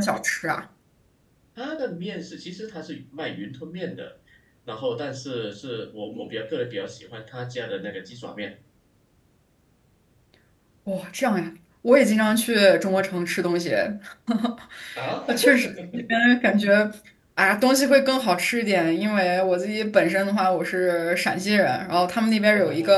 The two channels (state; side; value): identical; both; correlation 1.00